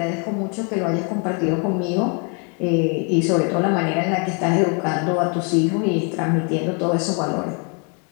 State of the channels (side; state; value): right; quieter; 37.1 dB